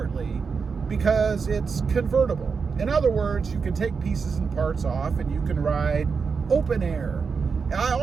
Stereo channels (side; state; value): left; quieter; 5.4 dB